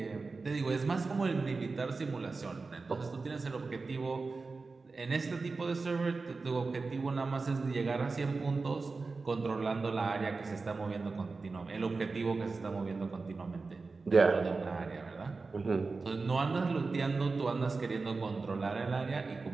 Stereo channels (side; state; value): left; quieter; 4.0 dB